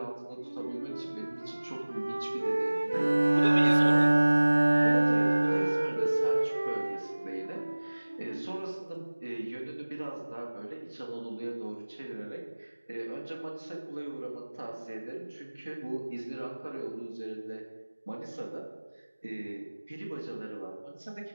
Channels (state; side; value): inverted; both; correlation -1.00